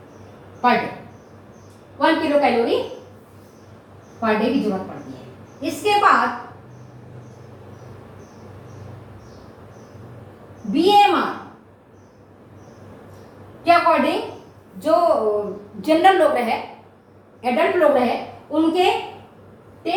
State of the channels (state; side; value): identical; both; correlation 1.00